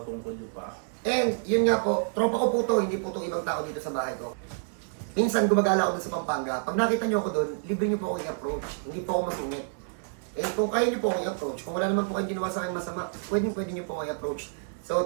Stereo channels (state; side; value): silent; left; digital silence